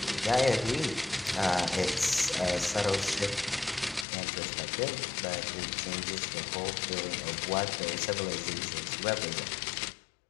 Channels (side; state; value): right; drops out; at 4.0 s